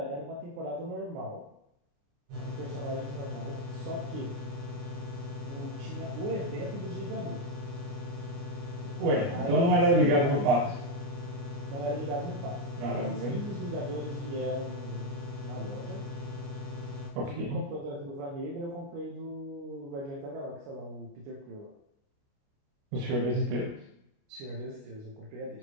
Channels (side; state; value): left; late; 29 ms